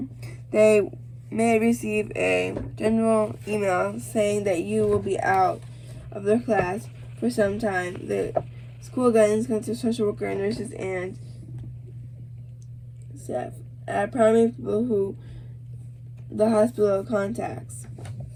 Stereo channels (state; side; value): identical; both; correlation 1.00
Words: They may receive a general email saying that you will be out of their class for some time. The school guidance counselors, social worker, nurses, and staff are primary people who the hospital contacts.